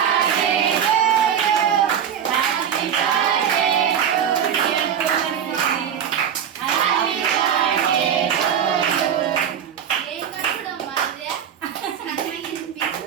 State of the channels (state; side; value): quieter; left; 8.7 dB